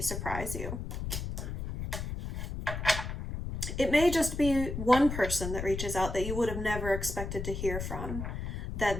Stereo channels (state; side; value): noise; left; rumble, 5 dB below the sound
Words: surprise you. It may just be one person that reaches out that you would have never expected to hear from.